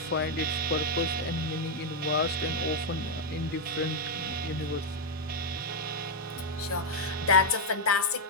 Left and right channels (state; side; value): normal; both; correlation -0.01